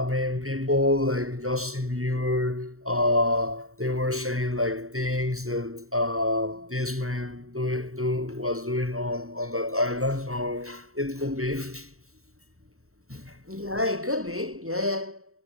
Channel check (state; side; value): late; left; 0.63 ms